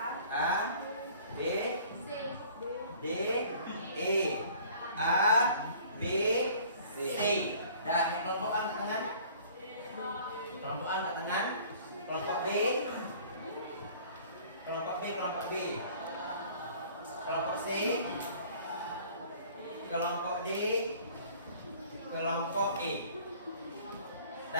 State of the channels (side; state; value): both; inverted; correlation -0.51